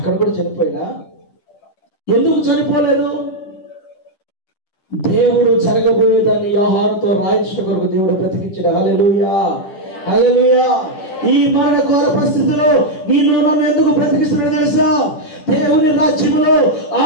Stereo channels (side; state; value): right; late; 10 ms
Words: కూడా చనిపోయినా ఎందుకు చనిపోలేదు? దేవుడు జరగబోయేదాన్ని యోహానుతో రాయించడం కొరకు దేవుడు బ్రతికించాడు. హల్లెలూయా, హల్లెలూయా. ఈ మరణ ఘోర పరిస్థితిలో నేను నన్ను ఎందుకు బ్రతికిస్తున్నాడు తెలుసా? దేవుని రాజ్యములో, ఆ